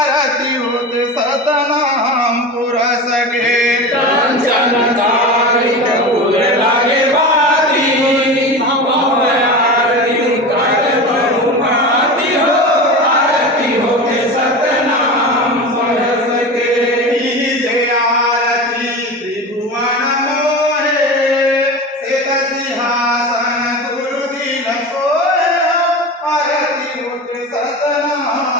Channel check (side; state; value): both; normal; correlation 0.28